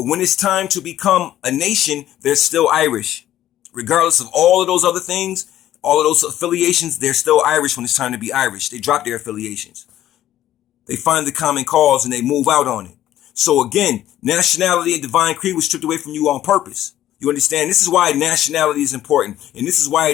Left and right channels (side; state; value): right; quieter; 12.7 dB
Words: when it's time to become a nation, they're still Irish. Regardless of all of those other things, all of those affiliations, they're still Irish when it's time to be Irish. They drop their affiliations. They find the common cause and they move out on it. So again, nationality and divine creed was stripped away from you on purpose. You understand? This is why nationality is important. And this is why